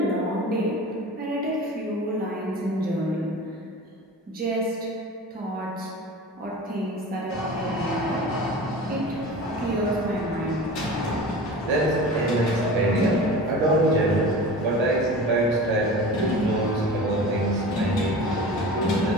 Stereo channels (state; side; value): normal; both; correlation 0.36